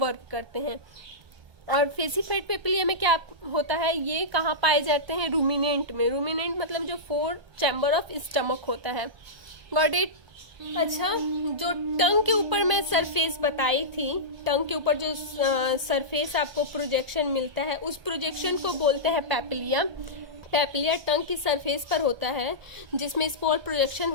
करते हैं. और फेसिफाइड पैपिलिया में क्या होता है? ये कहाँ पाए जाते हैं? रूमिनेंट में. रूमिनेंट मतलब जो 4 चैम्बर ऑफ स्टमक होता है. Got it. अच्छा, जो टंग के ऊपर मैं सरफेस बताई थी, टंग के ऊपर जो सरफेस आपको प्रोजेक्शन मिलता है उस प्रोजेक्शन को बोलते हैं पैपिलिया. पेपिलिया टंग की सरफेस पर होता है, जिसमें स्पोर प्रोजेक्शन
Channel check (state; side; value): late; left; 1.3 ms